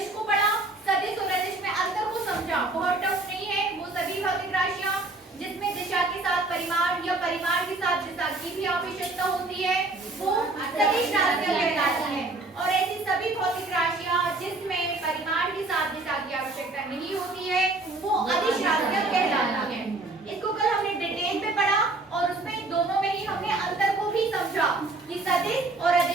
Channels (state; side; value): quieter; left; 3.1 dB